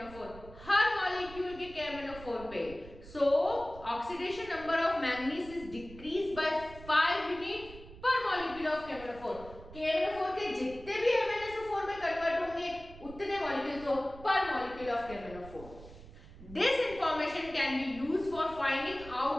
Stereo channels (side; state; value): right; noise; rumble, 17 dB below the sound